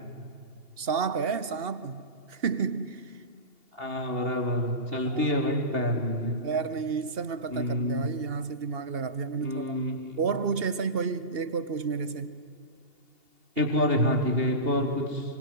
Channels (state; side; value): late; left; 2.8 ms